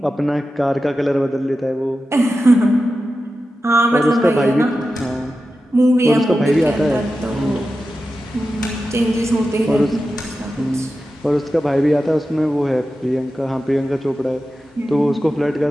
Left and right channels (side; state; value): both; normal; correlation 0.92